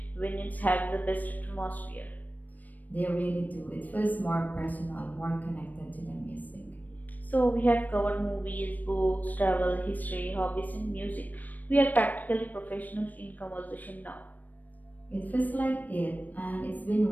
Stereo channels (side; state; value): right; late; 0.083 ms